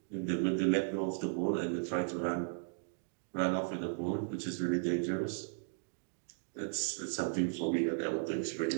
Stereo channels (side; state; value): left; silent; digital silence